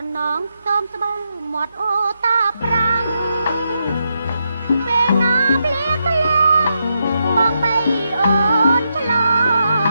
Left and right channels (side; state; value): both; inverted; correlation -0.83